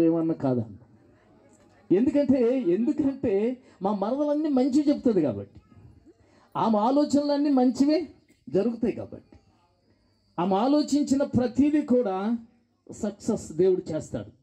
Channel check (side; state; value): both; identical; correlation 1.00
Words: ఏమన్నా కాదన్న. ఎందుకంటే మా మరదలన్నీ మంచి చెప్తుంది కాబట్టి, ఆమె ఆలోచనలన్నీ మంచివే జరుగుతాయి కాబట్టి, ఆమె ఆలోచించిన ప్రతిదీ కూడా సక్సెస్ దేవుడు చేస్తాడు.